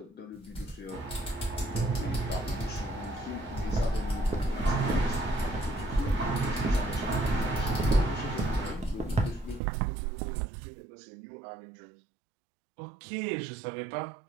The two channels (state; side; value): drops out; left; at 9.6 s